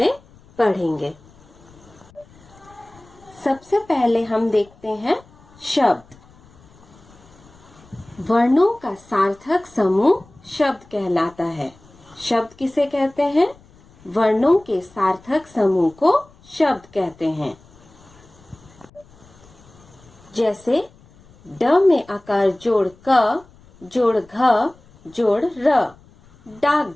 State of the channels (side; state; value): left; noise; rumble, 27 dB below the sound